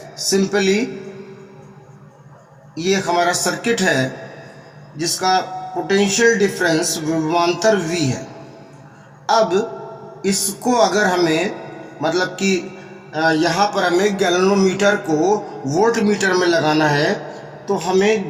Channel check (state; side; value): identical; both; correlation 1.00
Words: सिंपली ये हमारा सर्किट है जिसका पोटेंशियल डिफरेंस विभवांतर V है। अब इसको अगर हमें मतलब कि यहाँ पर हमें गैल्वेनोमीटर को वोल्ट मीटर में लगाना है तो हमें